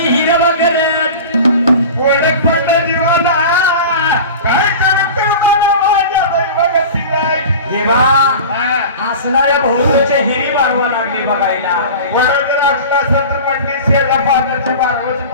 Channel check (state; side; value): inverted; both; correlation -0.35